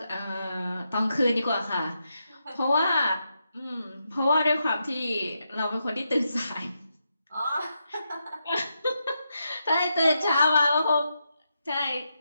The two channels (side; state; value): both; inverted; correlation -0.84